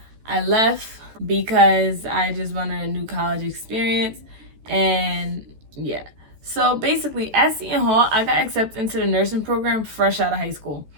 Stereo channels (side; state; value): left; late; 14 ms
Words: I left because I just wanted a new college experience, and yeah. So basically at Seton Hall, I got accepted into the nursing program fresh out of high school.